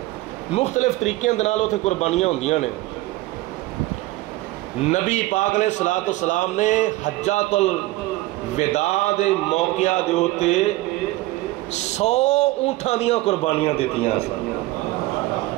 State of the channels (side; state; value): left; quieter; 18.6 dB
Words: مختلف طریقے دے نال اتنے قربانیاں ہوندیاں نے. نبی پاک علیہ السلام نے حجۃ الوداع دے موقع دے ہوتے 100 اونٹاں دیاں قربانیاں دیتیاں سن.